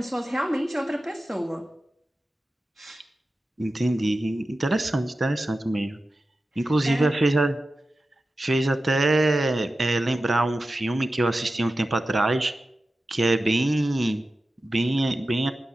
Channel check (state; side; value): normal; both; correlation 0.94